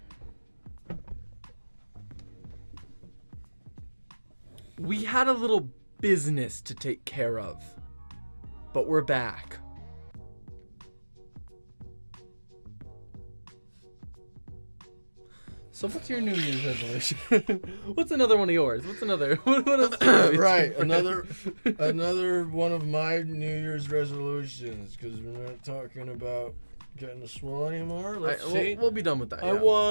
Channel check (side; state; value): both; inverted; correlation -1.00